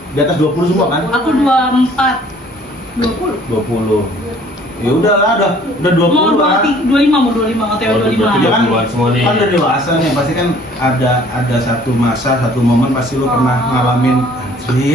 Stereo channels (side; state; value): both; normal; correlation 0.55